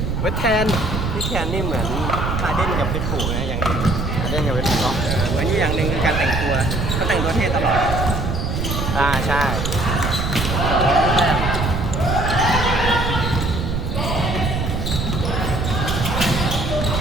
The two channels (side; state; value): right; noise; rumble, 1 dB below the sound